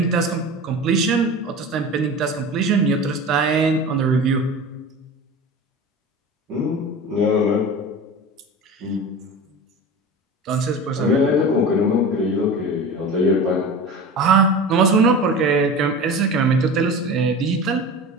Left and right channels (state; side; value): normal; both; correlation 0.33